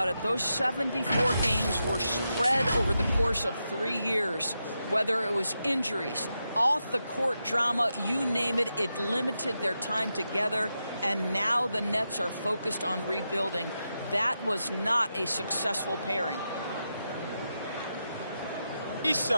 it. Those 74 games were spread over the course of 3 years. Whether it was injuries, off-the-court drama, you name it, it limited their time together. And now the Nets are focused on rebuilding. That was not a successful pairing. 3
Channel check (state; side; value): inverted; both; correlation -0.87